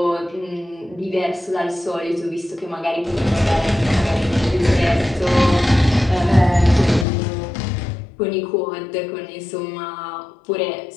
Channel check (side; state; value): right; drops out; at 7.1 s